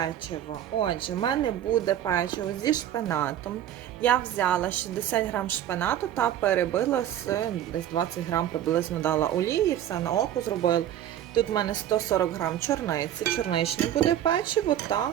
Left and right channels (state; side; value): quieter; left; 11.2 dB